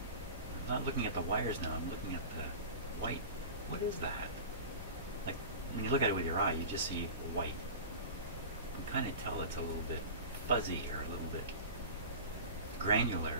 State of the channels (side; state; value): both; inverted; correlation -0.33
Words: I'm not looking at the wires now. I'm looking at the white. What is that? Like when you look at it with your eye, you just see white. You can kind of tell it's a little bit fuzzy or a little bit